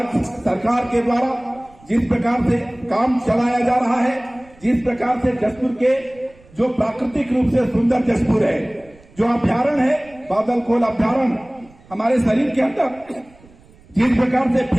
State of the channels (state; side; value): noise; right; rumble, 27 dB below the sound